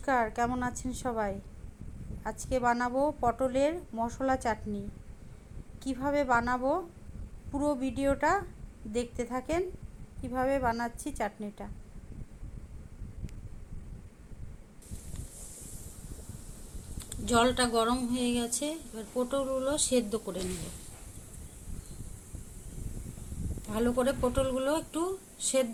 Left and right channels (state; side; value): identical; both; correlation 1.00